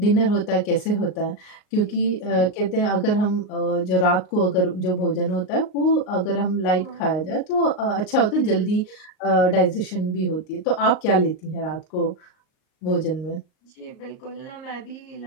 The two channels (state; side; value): late; right; 38 ms